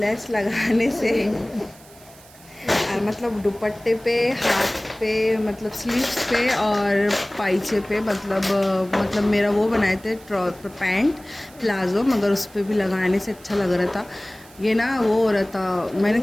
लगाने से मतलब दुपट्टे पे, हाथ पे, मतलब स्लीव्स पे और पाइचे पे, मतलब मेरा वो बनाए थे पैंट प्लाज़ो, मगर उस पर भी लगाने से अच्छा लग रहा था। ये ना वो हो रहा था, मैंने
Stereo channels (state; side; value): noise; right; hiss, 24 dB below the sound